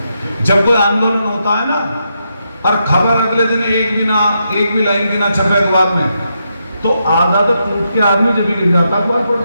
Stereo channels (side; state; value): both; inverted; correlation -0.82